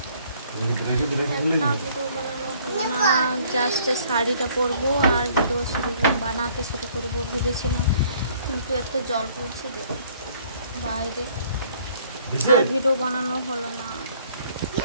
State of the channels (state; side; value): inverted; both; correlation -0.60